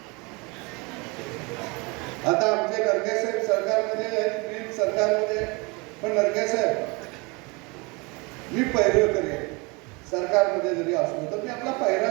आता आमचे नरकेसाहेब सरकारमध्ये आहेत, मी सरकारमध्ये, पण नरकेसाहेब मी पैरं करेन सरकारमध्ये जरी असलो तर मी आपला पैरा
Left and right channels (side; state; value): left; quieter; 27.9 dB